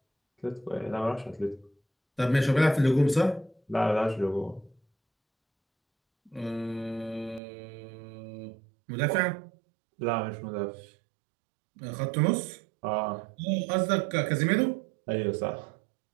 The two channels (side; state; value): left; drops out; at 7.4 s